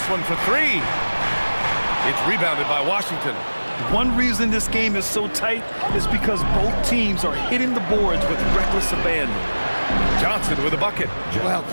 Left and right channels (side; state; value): both; inverted; correlation -1.00